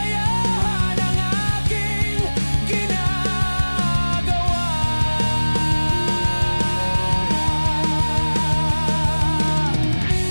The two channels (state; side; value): inverted; both; correlation -1.00